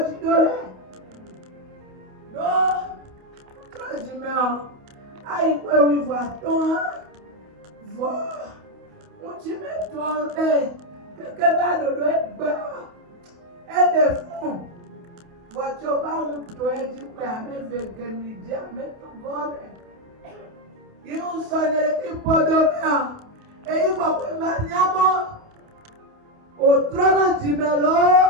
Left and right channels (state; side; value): late; left; 28 ms